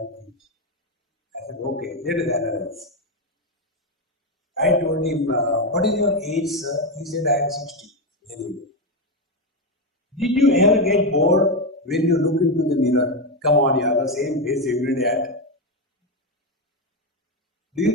to teach. I said, okay, let us analyze. I told him, what is your age, sir? He said, I am 60. Very good. Did you ever get bored when you look into the mirror? Come on, you have the same face every day. Do you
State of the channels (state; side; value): normal; both; correlation 0.09